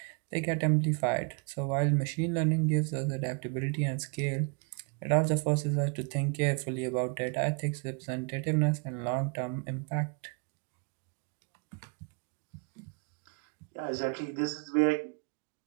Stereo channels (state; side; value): quieter; left; 34.6 dB